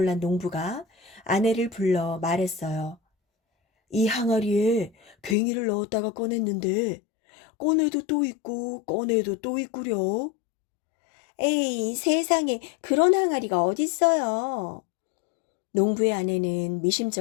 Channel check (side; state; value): right; drops out; at 5.4 s